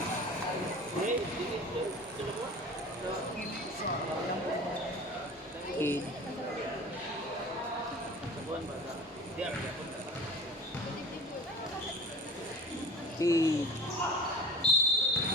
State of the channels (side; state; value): both; normal; correlation 0.39